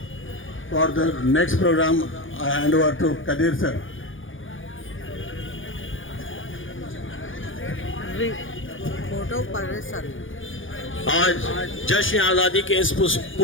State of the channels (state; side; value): late; right; 0.58 ms